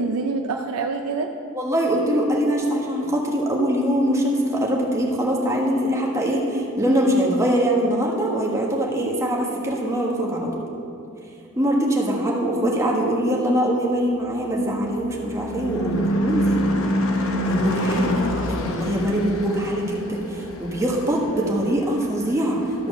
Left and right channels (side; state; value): both; normal; correlation 0.58